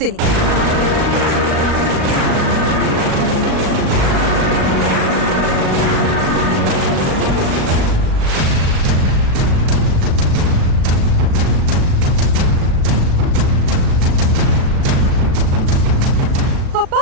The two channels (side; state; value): left; late; 37 ms